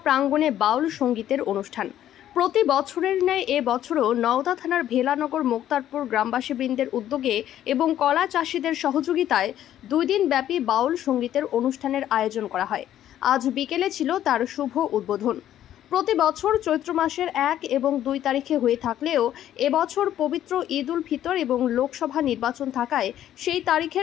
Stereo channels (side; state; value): right; quieter; 11.7 dB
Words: প্রাঙ্গণে বাউল সঙ্গীতের অনুষ্ঠান। প্রতি বছরের ন্যায় এ বছরও নওদা থানার ভেলানগর মোক্তারপুর গ্রামবাসীবৃন্দের উদ্যোগে এবং কলা চাষিদের সহযোগিতায় 2 দিন ব্যাপী বাউল সঙ্গীতের অনুষ্ঠানের আয়োজন করা হয়। আজ বিকেলে ছিল তার শুভ উদ্বোধন। প্রতি বছর চৈত্র মাসের 1 এবং 2 তারিখে হয়ে থাকলেও এবছর পবিত্র ঈদ উল ফিতর এবং লোকসভা নির্বাচন থাকায় সেই